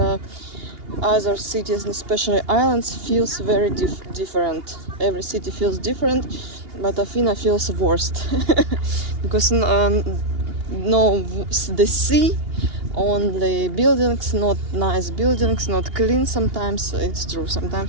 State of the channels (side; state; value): left; late; 2.8 ms